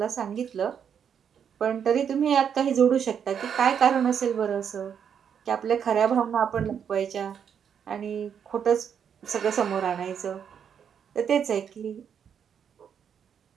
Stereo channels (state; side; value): quieter; left; 7.9 dB